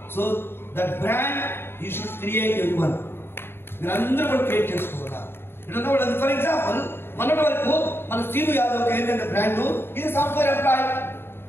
So that brand you should create everyone. మీరు అందరూ కూడా క్రియేట్ చేసుకోవాలా. ఫర్ ఎగ్జాంపుల్ మొన్నటి వరకు మన సీను యాదవ్ ఏంటంటే బ్రాండ్, ఇది software employee.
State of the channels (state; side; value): late; right; 0.11 ms